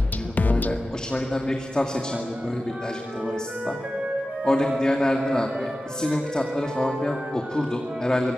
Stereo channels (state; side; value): normal; both; correlation 0.94